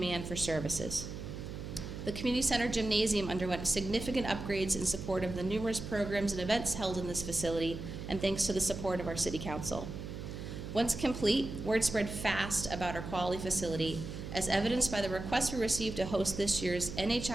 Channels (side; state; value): right; noise; hum, 8 dB below the sound